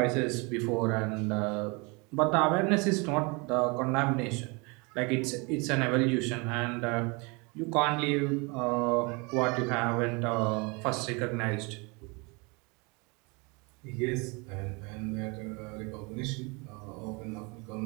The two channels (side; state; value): left; quieter; 29.3 dB